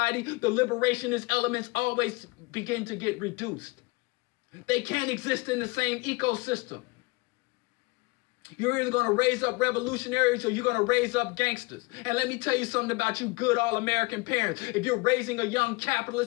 the liberationist elements always begin to get reduced. They can't exist in the same ecosystem. You're either going to raise up revolutionaries or you're going to raise up gangsters. And let me tell you something about you good all-American parents. If you're raising a young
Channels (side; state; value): right; quieter; 25.0 dB